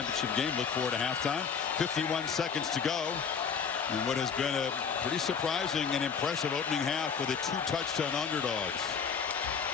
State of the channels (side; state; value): right; quieter; 6.4 dB